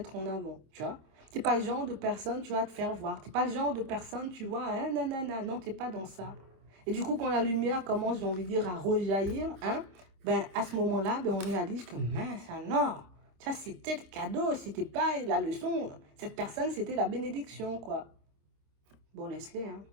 en avant, tu vois. Tu n'es pas le genre de personne, tu vas te faire voir. Tu n'es pas le genre de personne, tu vois, hein, non, non, non, non, tu n'es pas dans ça. Et du coup, quand la lumière commence, j'ai envie de dire, à rejaillir, hein, ben, à ce moment-là, ben, on réalise que, mince, alors, ça, c'était le cadeau, c'était pas la leçon. Cette personne, c'était la bénédiction, quoi. Bon, laisse-les, hein,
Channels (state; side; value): late; left; 26 ms